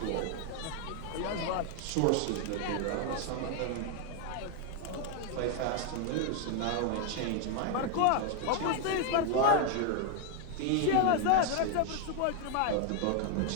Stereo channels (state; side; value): different; both; correlation 0.00